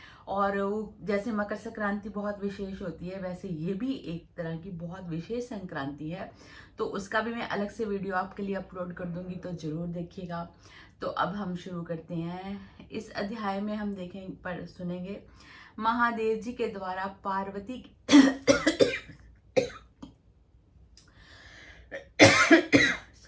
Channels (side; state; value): both; identical; correlation 1.00